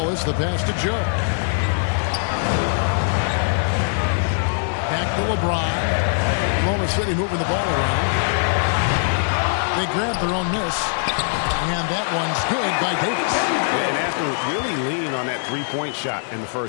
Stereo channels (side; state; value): right; silent; 59 dB below the other